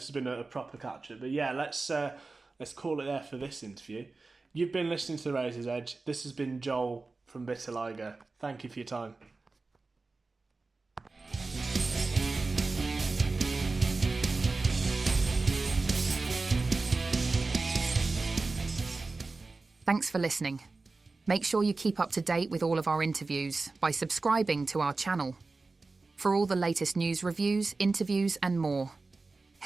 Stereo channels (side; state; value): left; quieter; 3.7 dB